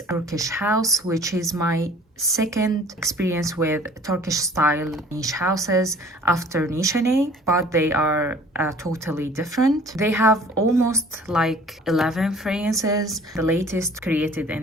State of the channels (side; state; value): both; normal; correlation 0.50